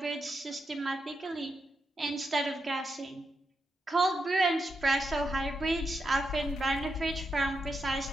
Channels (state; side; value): normal; both; correlation 0.84